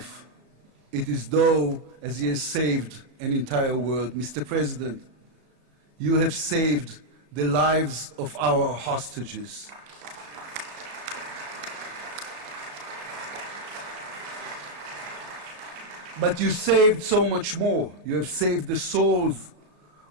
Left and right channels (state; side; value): late; left; 34 ms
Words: it is though as he has saved an entire world. Mr. President, you have saved the lives of our hostages. But you saved so much more. You have saved the souls